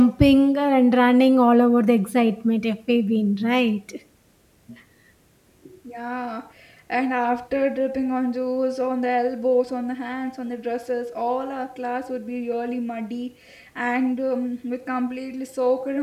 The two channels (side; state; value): both; identical; correlation 1.00